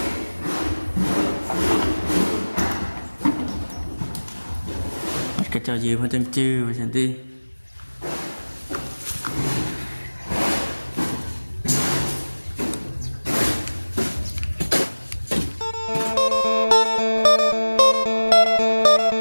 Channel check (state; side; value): inverted; both; correlation -1.00